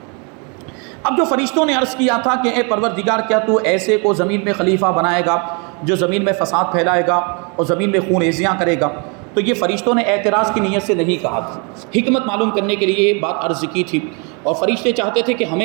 اب جو فرشتوں نے عرض کیا تھا کہ اے پروردگار، کیا تو ایسے کو زمین میں خلیفہ بنائے گا جو زمین میں فساد پھیلائے گا اور زمین میں خون ریزیاں کرے گا، تو یہ فرشتوں نے اعتراض کی نیت سے نہیں کہا تھا، حکمت معلوم کرنے کے لیے یہ بات عرض کی تھی۔ اور فرشتے چاہتے تھے کہ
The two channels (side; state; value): left; quieter; 34.2 dB